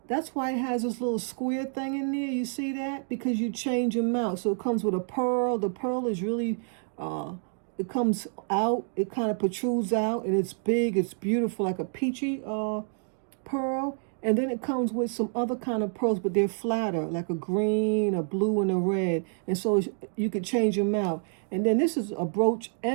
That's why it has this little square thing in there. You see that? Because you change them out. So it comes with a pearl. The pearl is really, it comes out. It kind of protrudes out, and it's big. It's beautiful, like a peachy pearl. And then it comes with some other kind of pearls, but they're flatter, like a green, a blue, and a red. And so you could change them out. And then this is a brooch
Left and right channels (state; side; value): silent; left; 59 dB below the other